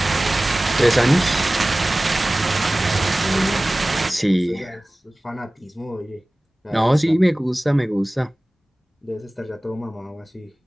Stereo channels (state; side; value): normal; both; correlation 0.98